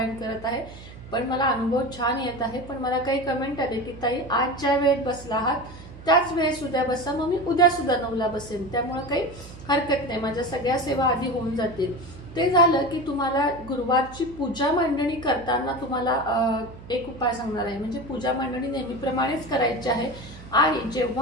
करत आहे पण मला अनुभव छान येत आहे, पण मला काही कमेंट आले की ताई आज ज्या वेळेत बसला आहात त्याच वेळेस उद्या बसा, मग मी उद्या सुद्धा 9ला बसेन, त्यामुळे काही हरकत नाही, माझ्या सगळ्या सेवा आधी होऊन जातील। ते झालं की तुम्हाला गुरुवारची पूजा मांडणी करताना तुम्हाला एक उपाय सांगणार आहे। म्हणजे पूजा मांडणी नेहमीप्रमाणेच करायची आहे आणि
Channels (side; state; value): right; noise; hum, 16 dB below the sound